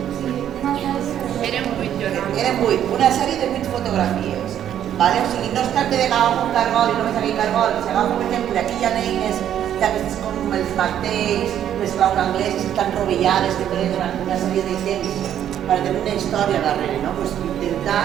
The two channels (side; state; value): left; quieter; 10.4 dB